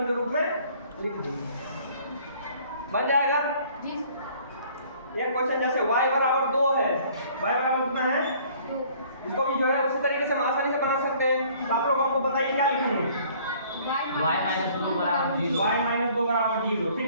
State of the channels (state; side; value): inverted; both; correlation -0.56